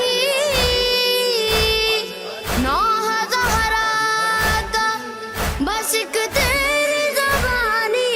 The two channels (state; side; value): identical; both; correlation 1.00